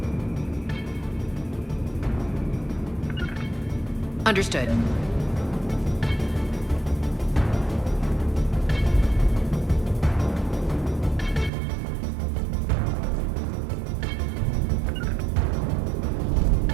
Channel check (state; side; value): drops out; left; at 11.5 s